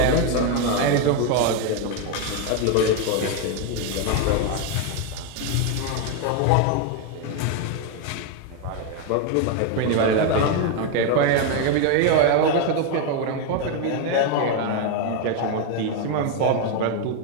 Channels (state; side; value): different; both; correlation 0.01